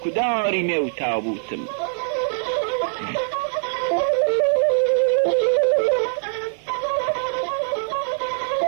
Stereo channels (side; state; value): left; silent; 64 dB below the other